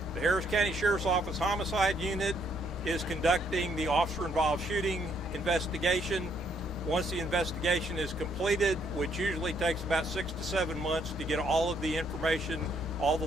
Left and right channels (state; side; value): normal; both; correlation 0.70